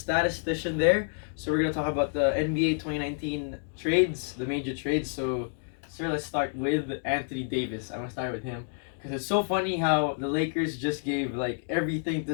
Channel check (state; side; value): silent; right; digital silence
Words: there. So we're going to talk about the NBA 2019 trades, the major trades. So sir, let's start with Anthony Davis. I'm going to start with him. Because it's so funny how the Lakers just gave like everything to